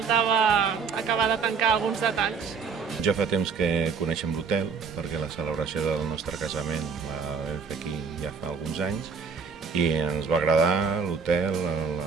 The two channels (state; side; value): quieter; left; 5.6 dB